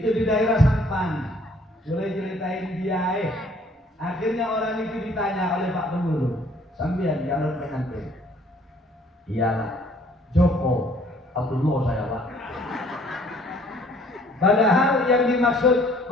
di daerah Sampang. Boleh ceritain dia. Akhirnya orang itu ditanya oleh Pak Pengurus, sampean calon pengantin. Iyalah, Joko Abdullah saya Pak. Padahal yang dimaksud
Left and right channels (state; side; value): normal; both; correlation 0.59